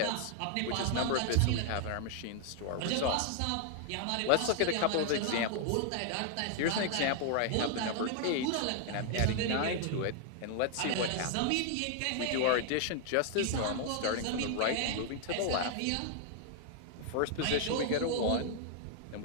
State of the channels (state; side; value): different; both; correlation 0.00